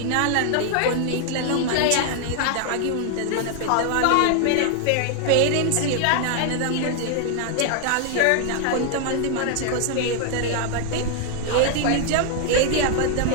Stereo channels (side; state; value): both; different; correlation 0.00